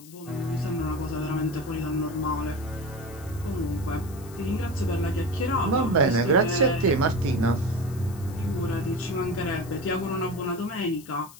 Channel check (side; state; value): left; noise; hiss, 20 dB below the sound